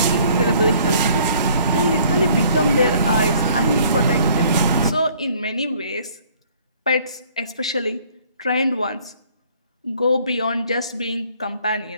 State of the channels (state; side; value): inverted; both; correlation -0.58